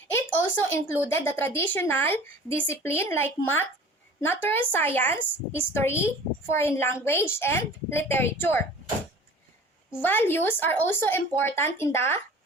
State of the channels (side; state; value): both; normal; correlation 0.43